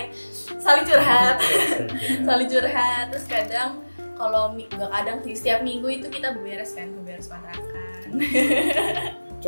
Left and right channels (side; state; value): both; inverted; correlation -1.00